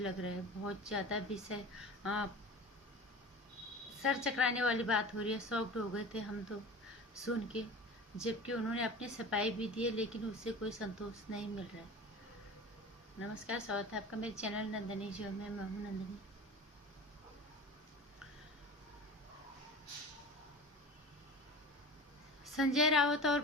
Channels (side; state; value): both; normal; correlation 0.35